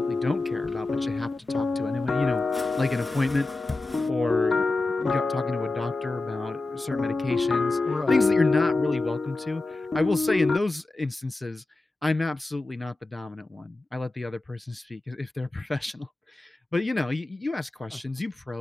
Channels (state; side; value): quieter; right; 3.1 dB